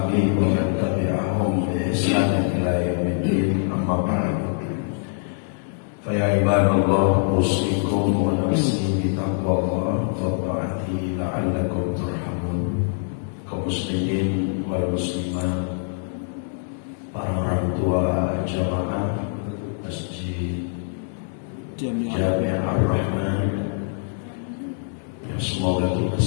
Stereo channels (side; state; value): right; silent; 63 dB below the other